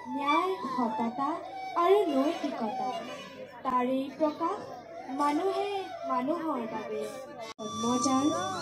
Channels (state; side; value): identical; both; correlation 1.00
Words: ন্যায়, সততা আৰু নৈতিকতা, তাৰেই প্ৰকাশ মানুহে মানুহৰ বাবে। জন্মজাল